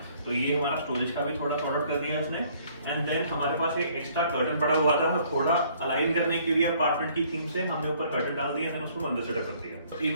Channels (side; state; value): both; inverted; correlation -0.61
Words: तो ये हमारा स्टोरेज का भी थोड़ा सॉर्ट आउट कर दिया इसने। एंड देन हमारे पास एक एक्स्ट्रा कर्टन पड़ा हुआ था, थोड़ा अलाइन करने के लिए अपार्टमेंट की थीम से हमने ऊपर कर्टन डाल दिया, देन उसको मंदिर सेटअप कर दिया। तो